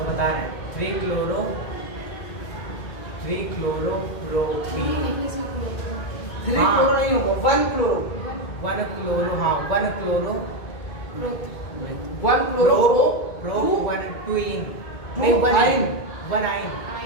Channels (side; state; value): right; late; 2.2 ms